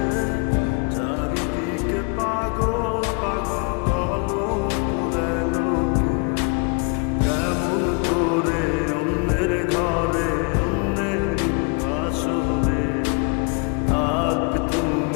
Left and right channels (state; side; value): quieter; right; 33.1 dB